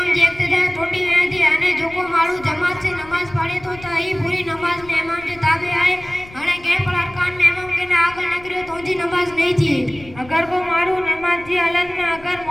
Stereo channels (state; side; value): noise; left; rumble, 20 dB below the sound